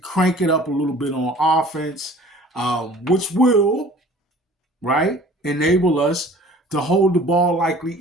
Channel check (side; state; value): both; normal; correlation 0.48